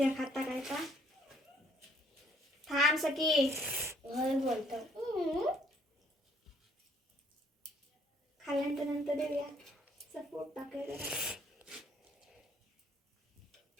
खाता काय का. थांब सखी बोलतो खाल्ल्यानंतर नंतर देऊया सपोर्ट टाकायला.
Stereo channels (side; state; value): both; normal; correlation 0.63